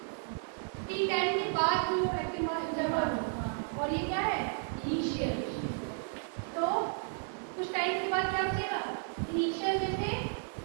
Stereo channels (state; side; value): silent; left; 56 dB below the other